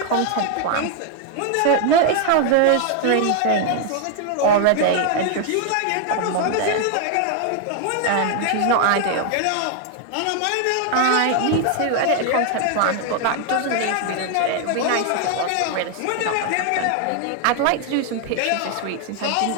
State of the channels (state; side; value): different; both; correlation 0.00